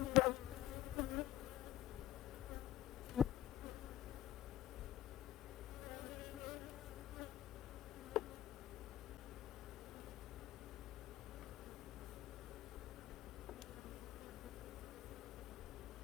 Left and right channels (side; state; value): right; quieter; 13.6 dB